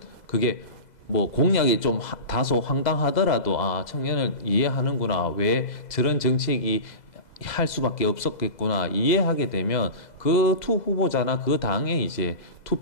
그게 뭐 공약이 좀 다소 황당하더라도 청년을 이해하는구나, 왜 저런 정책이 할 수밖에 없었겠구나 이해하게 되면 그 투 후보자나 그 당에 이제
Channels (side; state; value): right; late; 2.0 ms